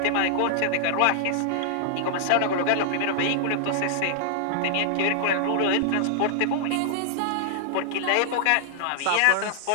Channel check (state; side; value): different; both; correlation 0.00